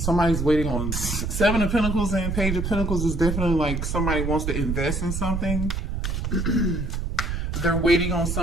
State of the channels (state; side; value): noise; right; rumble, 2 dB below the sound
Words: waiting on Seven of Pentacles, and Page of Pentacles is definitely like somebody wants to invest in something. They're waiting on